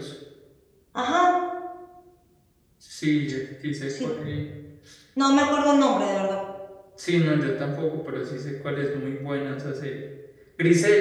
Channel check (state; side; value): identical; both; correlation 1.00